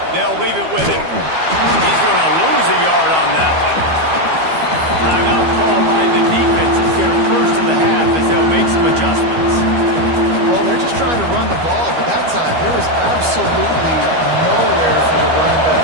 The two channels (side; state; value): left; late; 12 ms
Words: They'll leave it with him. He's going to lose a yard on that one. Timeout call by the defense. It's their first of the half as they'll make some adjustments. Well, they're just trying to run the ball, but that time there was absolutely nowhere for the running